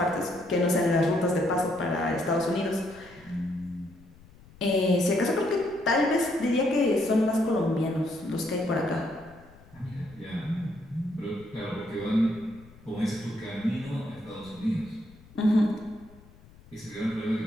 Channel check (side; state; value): left; noise; rumble, 24 dB below the sound